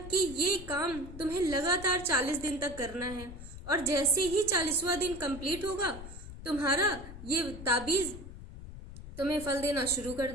ये काम तुम्हें लगातार 40 दिन तक करना है और जैसे ही 40वां दिन कंप्लीट होगा, तुम्हारा ये ताबीज तुम्हें फल देना शुरू कर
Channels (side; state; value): left; noise; rumble, 13 dB below the sound